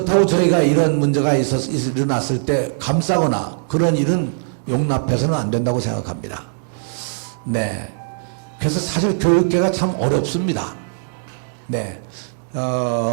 저희가 이런 문제가 일어났을 때 감싸거나 그런 일은 용납해서는 안 된다고 생각합니다. 네. 그래서 사실 교육계가 참 어렵습니다. 네.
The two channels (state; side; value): silent; left; digital silence